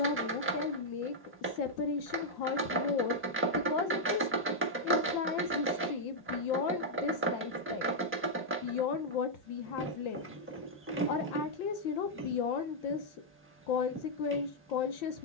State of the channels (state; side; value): normal; both; correlation -0.04